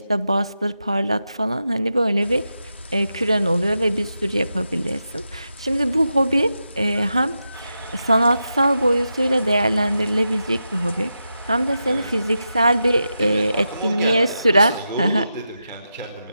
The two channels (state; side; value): inverted; both; correlation -0.88